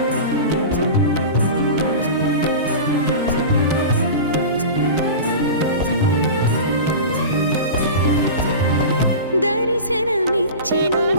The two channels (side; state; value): both; inverted; correlation -0.30